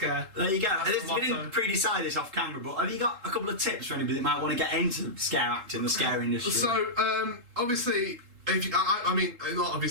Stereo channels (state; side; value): late; left; 3.7 ms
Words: There you go. We didn't pre-decide this off camera, but have you got a couple of tips for anybody that might want to get into scare acting, the scare industry? So, obviously... I mean, not